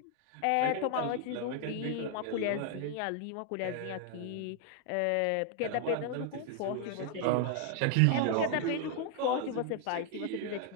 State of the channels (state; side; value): different; both; correlation 0.00